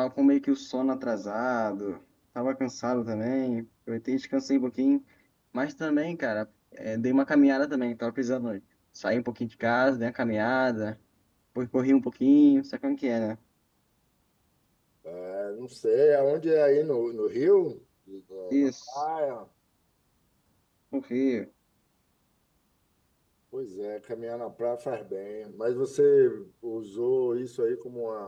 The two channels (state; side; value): identical; both; correlation 1.00